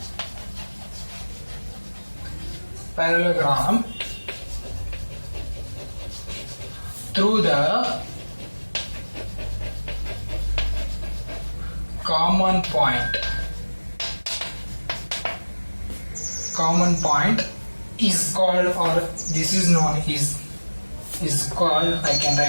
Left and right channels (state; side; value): inverted; both; correlation -1.00